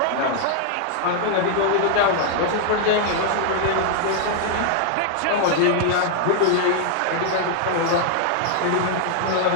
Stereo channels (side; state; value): both; different; correlation -0.01